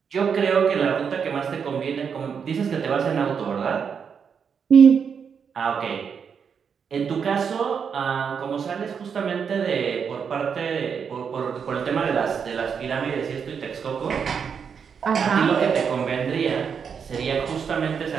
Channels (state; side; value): quieter; left; 6.7 dB